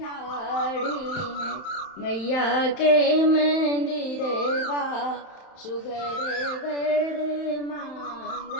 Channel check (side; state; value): right; late; 31 ms